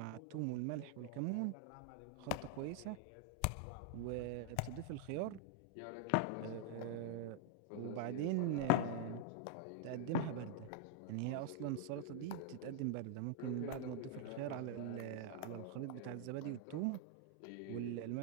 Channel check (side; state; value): both; different; correlation -0.01